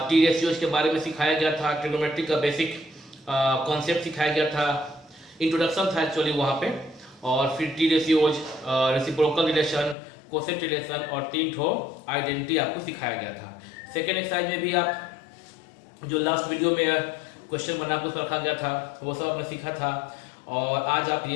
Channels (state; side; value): drops out; right; at 10.0 s